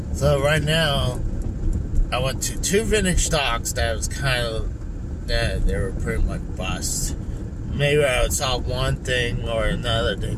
So right now, I went to 2 vintage stocks that was they were pretty much bust. Maybe I saw one thing or another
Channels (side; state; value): both; identical; correlation 1.00